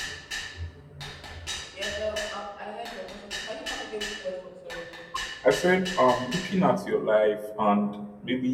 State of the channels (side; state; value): both; identical; correlation 1.00